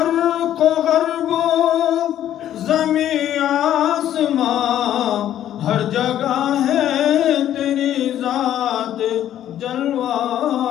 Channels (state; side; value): quieter; right; 11.5 dB